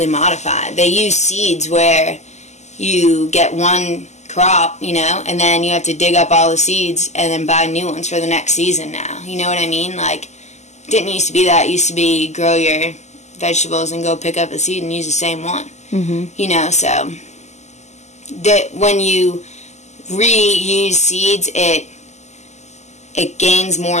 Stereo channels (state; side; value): late; right; 0.33 ms